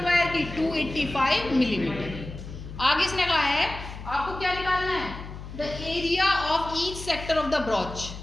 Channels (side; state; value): left; noise; hum, 11 dB below the sound